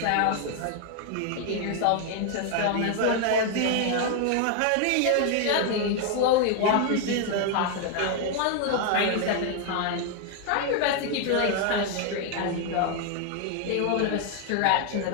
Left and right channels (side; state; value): both; different; correlation 0.00